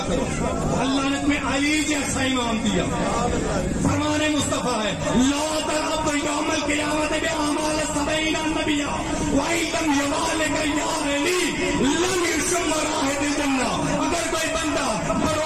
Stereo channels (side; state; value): both; identical; correlation 1.00